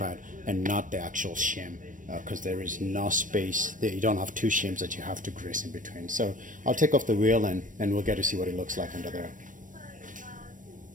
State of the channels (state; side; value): late; left; 0.38 ms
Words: and not the actual shim, because there is no space. You don't have two shims that you have to grease in between. So I'll take off the wheel and we'll get to see what it looks like under there.